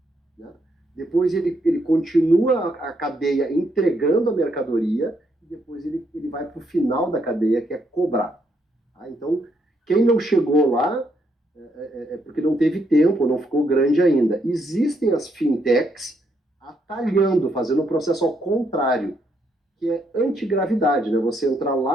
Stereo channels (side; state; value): both; normal; correlation 0.75